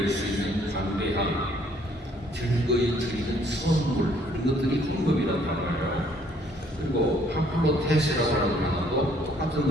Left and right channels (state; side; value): normal; both; correlation 0.63